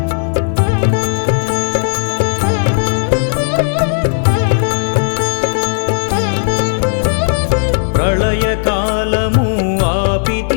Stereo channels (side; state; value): right; silent; digital silence